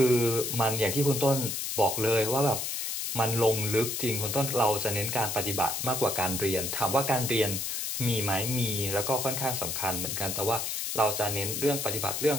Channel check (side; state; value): left; noise; hiss, 2 dB below the sound